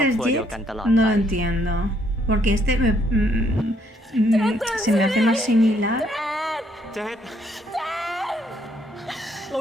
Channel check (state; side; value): normal; both; correlation 0.69